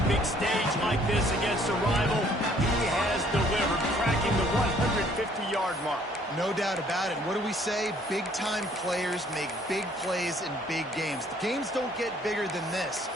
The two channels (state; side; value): normal; both; correlation 0.61